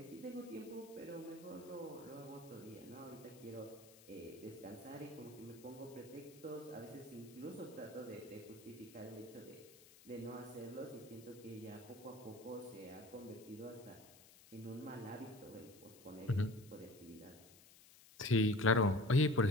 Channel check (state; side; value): noise; left; hiss, 22 dB below the sound